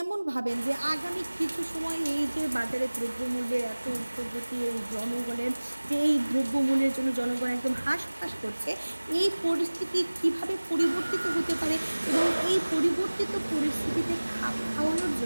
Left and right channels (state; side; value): inverted; both; correlation -1.00